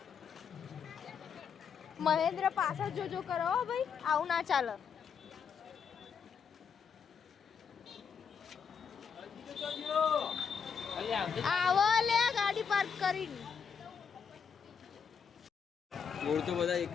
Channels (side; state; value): right; quieter; 6.7 dB